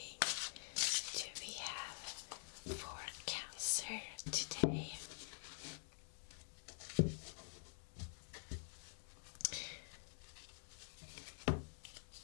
do we have for Cancer today?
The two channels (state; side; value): silent; right; digital silence